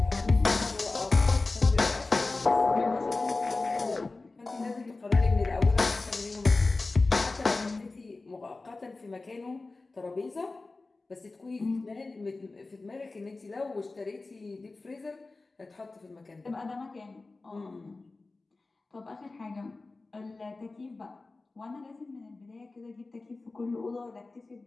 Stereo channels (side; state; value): right; quieter; 3.5 dB